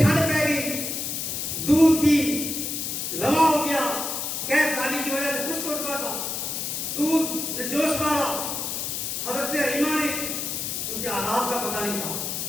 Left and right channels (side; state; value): left; noise; hiss, 3 dB below the sound